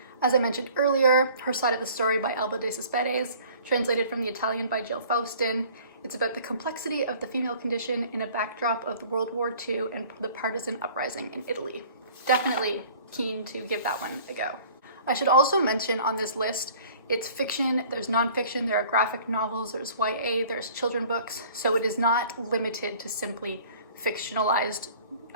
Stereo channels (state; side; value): inverted; both; correlation -0.50